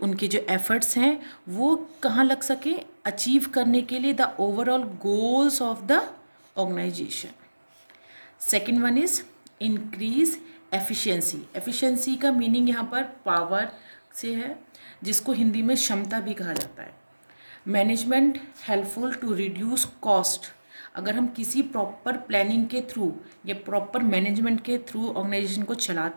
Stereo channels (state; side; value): inverted; both; correlation -1.00